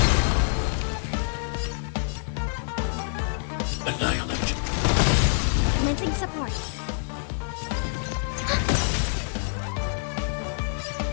Annihilate. Commencing support.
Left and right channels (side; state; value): right; silent; digital silence